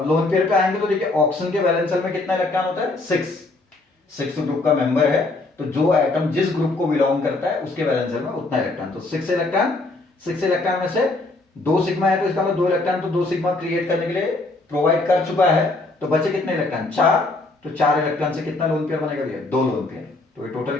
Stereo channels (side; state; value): right; quieter; 3.1 dB